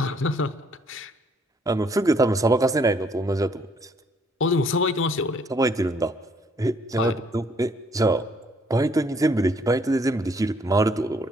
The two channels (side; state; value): both; normal; correlation 0.65